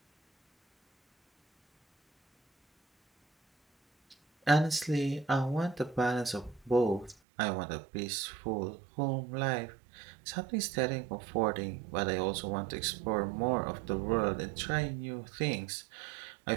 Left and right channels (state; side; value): drops out; left; at 7.2 s